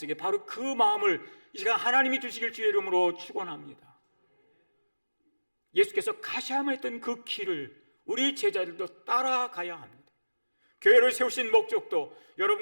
바로 그 마음을 이 시간 하나님이 주시길 주의 이름으로 축원합니다. 예수께서 가셔야만 했던 그 길을 우리 제자들도 따라가야 합니다. 교회를 세우신 목적도,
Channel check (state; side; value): inverted; both; correlation -1.00